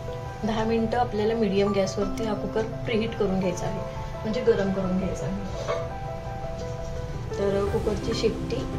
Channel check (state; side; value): identical; both; correlation 1.00